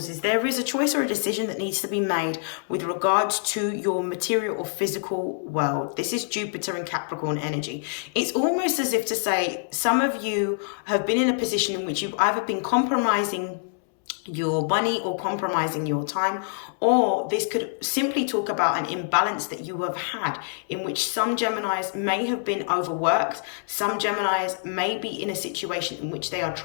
is there is a choice or a decision that needs to be made with regards to your material or physical world. This is Jupiter and Capricorn energy. It's almost as if to say, some of you have been in a position in which you've either been compromising your money or compromising your time, or this could simply talk about an imbalance that you have had, in which some Geminis may have been overworked. Some Geminis may be in a situation in which they are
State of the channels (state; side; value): silent; right; 61 dB below the other